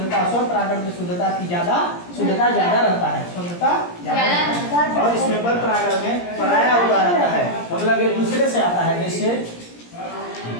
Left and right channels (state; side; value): late; right; 17 ms